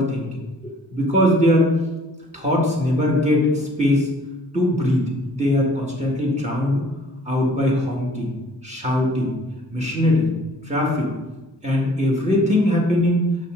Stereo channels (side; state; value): both; normal; correlation 0.56